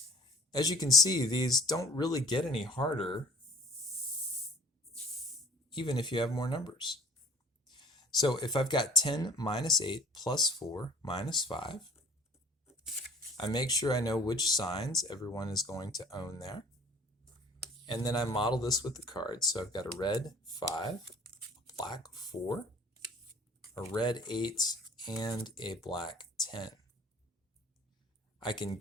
As you can see, these don't really get any harder even if you have more numbers. So if I've got 10 minus 8 plus 4 minus 5, I make sure I know which signs everyone is going to own there. And then I model this with the cards. So I've got a red 5, a black 4, a red 8, and a black 10. I can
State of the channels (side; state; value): both; normal; correlation 0.47